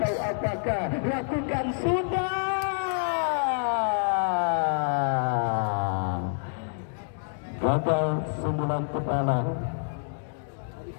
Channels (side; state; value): right; silent; digital silence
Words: apakah. Lakukan sudah. Gagal sundulan kepala